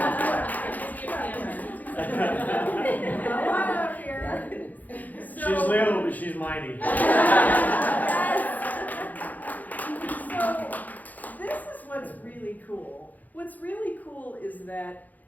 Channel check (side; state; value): right; late; 0.081 ms